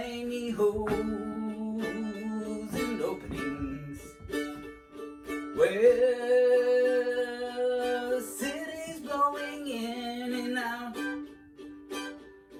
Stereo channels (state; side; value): identical; both; correlation 1.00